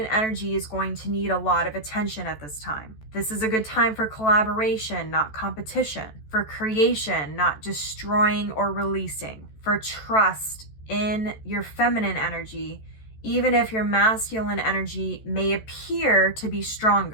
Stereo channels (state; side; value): late; right; 14 ms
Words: energy is going to need a lot of attention at this time. This is a good time for collaboration, not competition. For creation, not destroying or releasing. For trust in your feminine energy, even if your masculine energy may appear to be